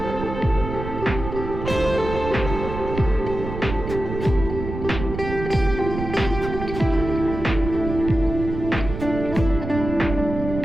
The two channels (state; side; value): noise; right; rumble, 7 dB below the sound